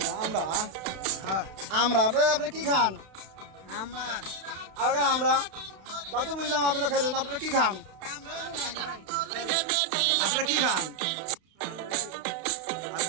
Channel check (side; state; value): left; late; 32 ms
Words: আমরা আমরা আপনারা কি খান আমরা তা তো বুঝলাম আপনারা খাইলেন আপনারা কি খান আপনারা কি খান